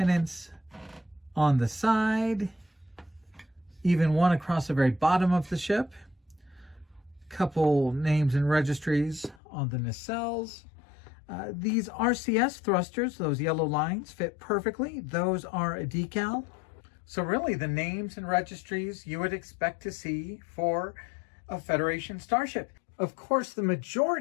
on the side, even one across the very bottom of the ship. Couple names and registries on the nacelles. These RCS thrusters, those yellow lines, fit perfectly. Those are a decal. So really the names and registries you would expect to see for a Federation starship. Of course, the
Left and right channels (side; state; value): right; drops out; at 9.4 s